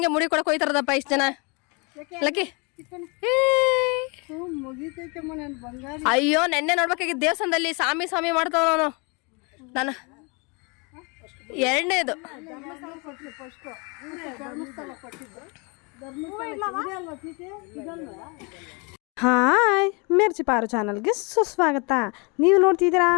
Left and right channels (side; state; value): right; quieter; 31.1 dB